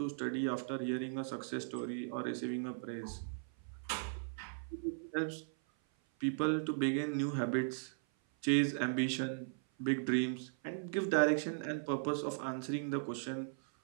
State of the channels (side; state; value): left; silent; 53 dB below the other